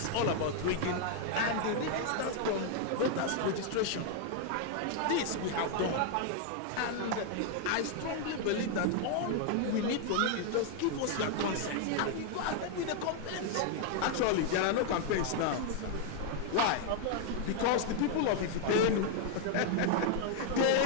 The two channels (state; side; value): different; both; correlation 0.00